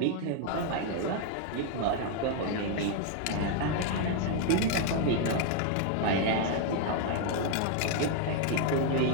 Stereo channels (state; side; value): different; both; correlation 0.00